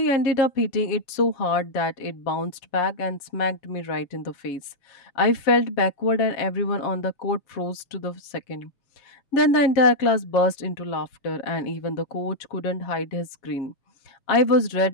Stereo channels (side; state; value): right; late; 7.3 ms